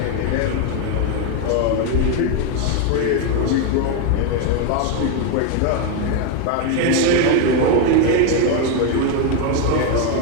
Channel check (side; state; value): both; different; correlation 0.02